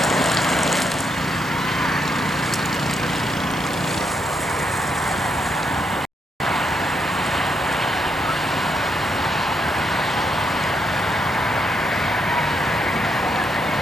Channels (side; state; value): both; normal; correlation 0.78